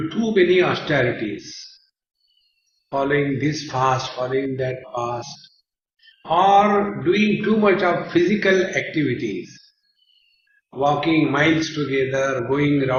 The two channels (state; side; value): identical; both; correlation 1.00